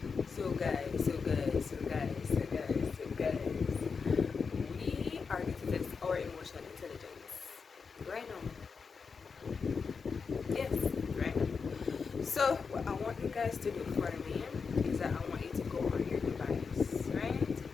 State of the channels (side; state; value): right; quieter; 5.3 dB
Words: we are going to test our emotional intelligence right now. Yes, right. So what I want you guys to do for me is that I want you to go on your device, right?